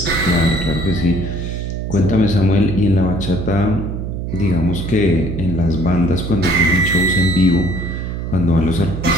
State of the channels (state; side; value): noise; right; hum, 4 dB below the sound